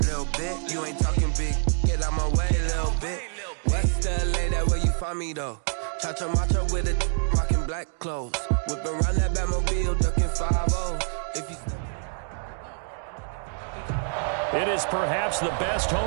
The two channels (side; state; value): left; silent; 58 dB below the other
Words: bit. You ain't talking big. Get out my way, little bit. West LA, that where you find me though. Cha-cha macha with a rockin' black clothes. Whip around that Batmobile, ducking 5-0. If you. It is perhaps the best